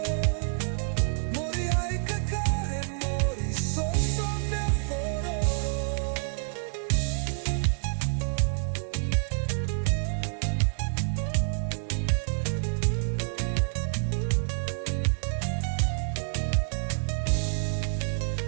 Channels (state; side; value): silent; left; digital silence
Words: Mori hai kakare mori so me aforo.